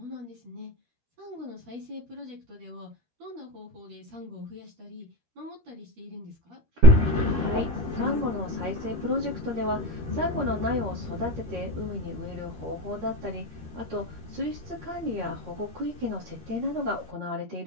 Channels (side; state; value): left; late; 13 ms